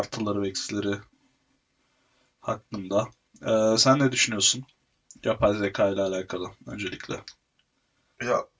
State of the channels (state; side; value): identical; both; correlation 1.00